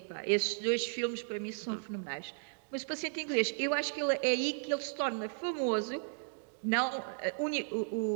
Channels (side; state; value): left; silent; digital silence